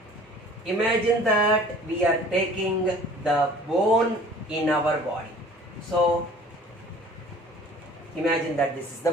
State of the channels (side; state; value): both; normal; correlation 0.49